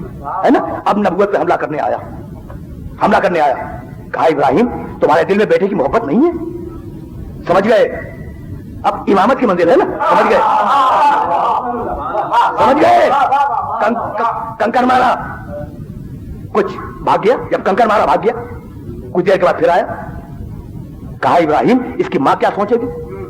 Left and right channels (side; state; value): both; identical; correlation 1.00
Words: ہے نا۔ اب نبوت پہ حملہ کرنے آیا، کہا ابراہیم تمہارے دل میں بیٹے کی محبت نہیں ہے؟ سمجھ گئے؟ اب امامت کی منزل ہے نا، سمجھ گئے؟ کنکر مارا، کچھ بھاگ گیا، جب کنکر مارا بھاگ گیا، کچھ دیر کے بعد پھر آیا، کہا ابراہیم اس کی ماں کیا سوچے گی؟